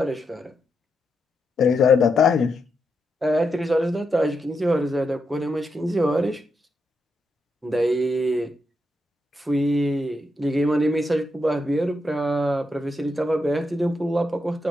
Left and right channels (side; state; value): both; normal; correlation 0.83